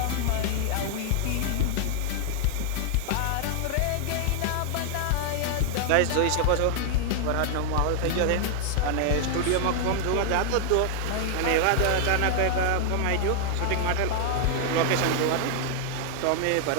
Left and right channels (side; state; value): both; different; correlation 0.00